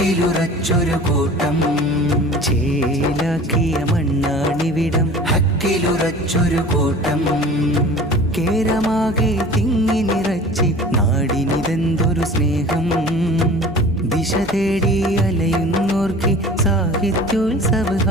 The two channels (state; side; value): normal; both; correlation 0.42